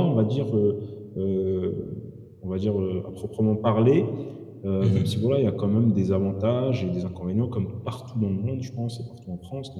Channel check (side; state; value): both; identical; correlation 1.00